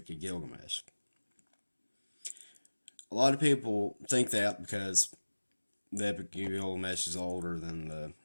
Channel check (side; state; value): both; inverted; correlation -1.00